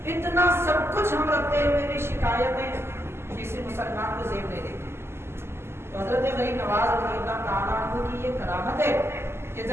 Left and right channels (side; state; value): left; late; 0.12 ms